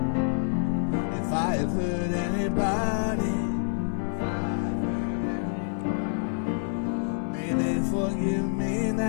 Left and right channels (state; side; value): silent; right; 60 dB below the other